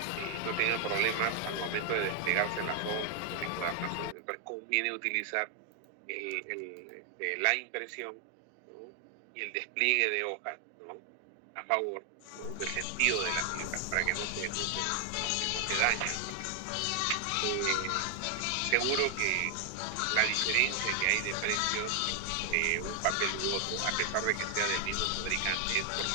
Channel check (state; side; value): different; both; correlation 0.00